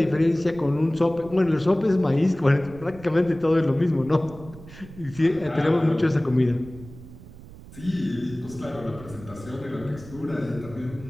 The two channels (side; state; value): right; noise; rumble, 17 dB below the sound